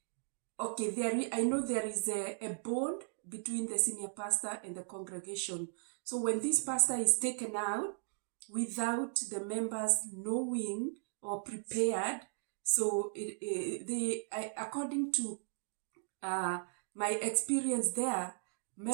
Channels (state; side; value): silent; left; digital silence